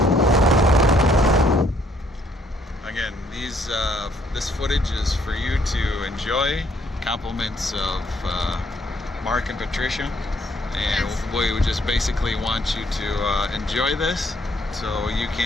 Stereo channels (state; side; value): normal; both; correlation 0.68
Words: Again, this footage is for you to enjoy. Compliments of Mark and Patricia, and we would just basically want you to enjoy this, so you